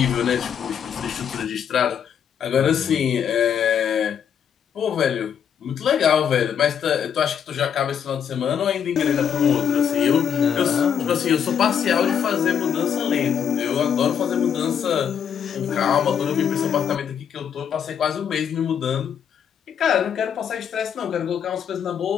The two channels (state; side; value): quieter; right; 8.1 dB